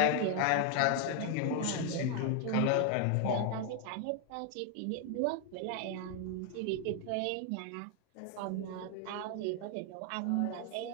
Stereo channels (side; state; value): both; different; correlation 0.00